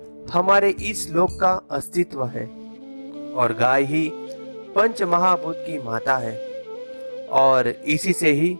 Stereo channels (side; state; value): both; inverted; correlation -1.00